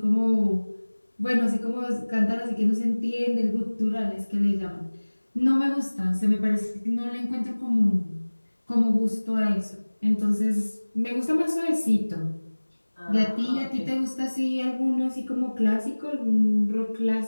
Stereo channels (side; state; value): both; inverted; correlation -1.00